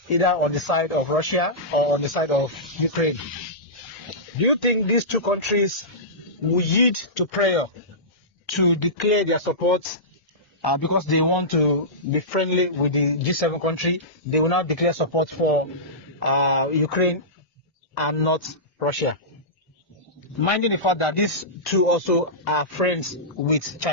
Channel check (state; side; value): normal; both; correlation -0.18